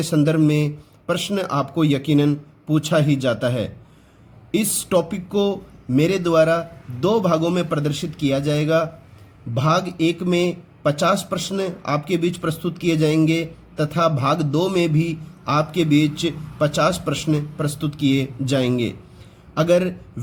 संदर्भ में प्रश्न आपको यकीनन पूछा ही जाता है। इस टॉपिक को मेरे द्वारा 2 भागों में प्रदर्शित किया जाएगा। भाग 1 में 50 प्रश्न आपके बीच प्रस्तुत किए जाएंगे तथा भाग 2 में भी आपके बीच 50 प्रश्न प्रस्तुत किए जाएंगे। अगर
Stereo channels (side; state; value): both; identical; correlation 1.00